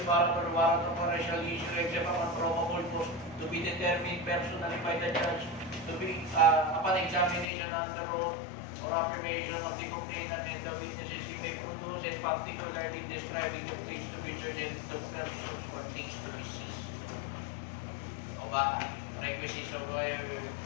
warrant or warrant of arrest shall issue except upon probable cause to be determined personally by the judge to be upon examination under oath or affirmation of the complainant and the witnesses he may produce, and particularly describing the place to be searched and the persons or things to be seized. O ba, requisites of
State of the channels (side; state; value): right; drops out; at 7.5 s